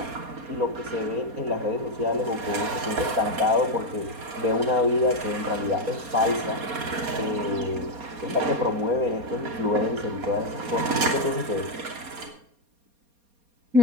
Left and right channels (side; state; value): left; late; 4.2 ms